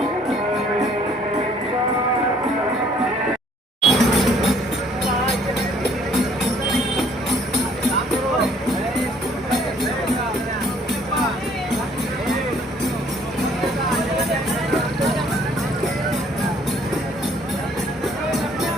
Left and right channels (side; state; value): both; normal; correlation 0.61